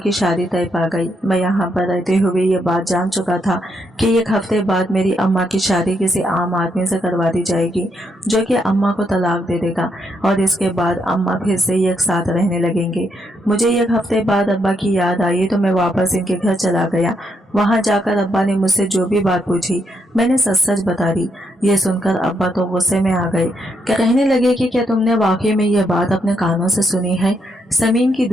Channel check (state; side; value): normal; both; correlation 0.78